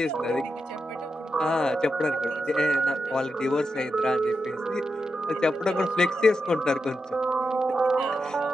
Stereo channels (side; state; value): both; normal; correlation 0.87